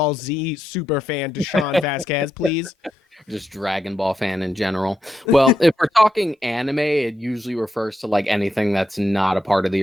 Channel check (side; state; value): both; normal; correlation 0.84